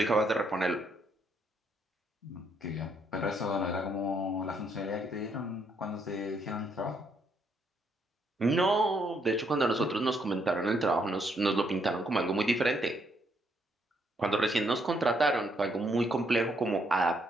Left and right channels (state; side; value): normal; both; correlation 0.73